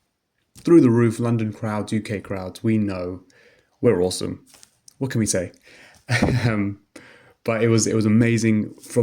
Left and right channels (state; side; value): identical; both; correlation 1.00